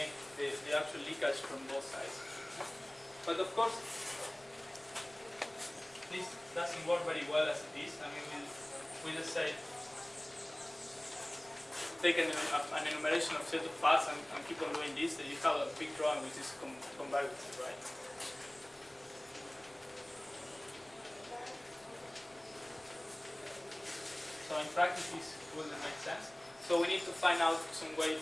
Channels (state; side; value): noise; left; rumble, 30 dB below the sound